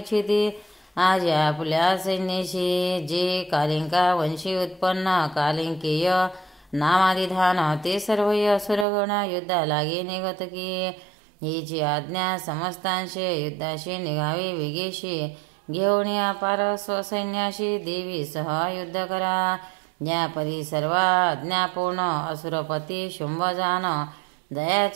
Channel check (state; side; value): drops out; left; at 8.8 s